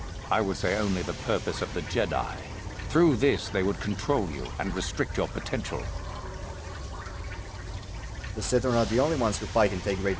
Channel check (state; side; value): identical; both; correlation 1.00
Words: I would say only the purpose of the Jedi. Through this, they would control you and restrict your potential. The Sith are not the only ones who fight and take great